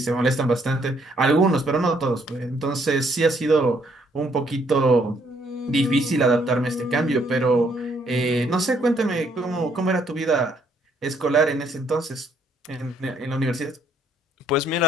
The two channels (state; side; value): normal; both; correlation 0.68